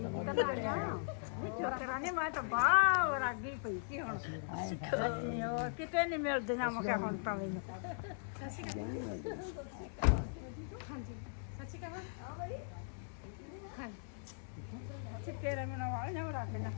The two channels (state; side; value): silent; right; 52 dB below the other